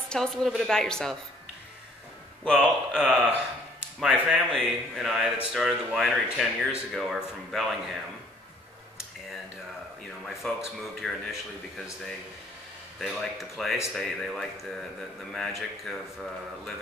a little bit about yourself. Well, my family and I that started the winery 10 years ago are from Bellingham, and my folks moved here initially because they liked the place, they liked the magic of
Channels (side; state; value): both; normal; correlation 0.59